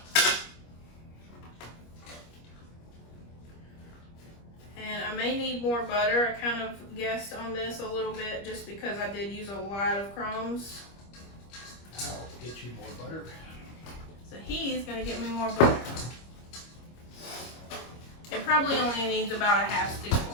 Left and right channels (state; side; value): late; right; 25 ms